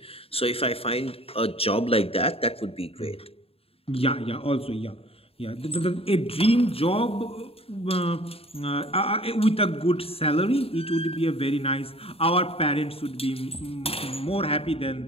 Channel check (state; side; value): late; right; 0.28 ms